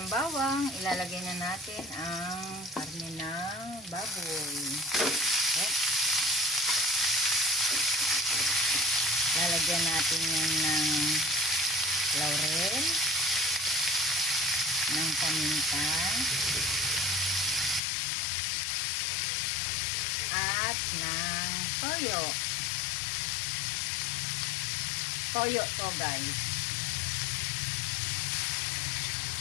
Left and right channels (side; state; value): right; drops out; at 17.8 s